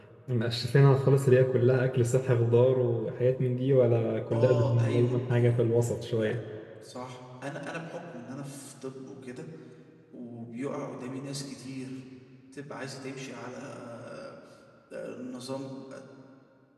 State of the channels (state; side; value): identical; both; correlation 1.00